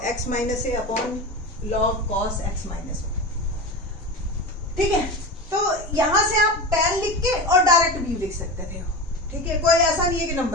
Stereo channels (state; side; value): normal; both; correlation 0.25